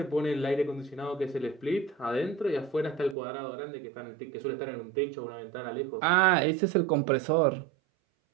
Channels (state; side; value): drops out; left; at 3.2 s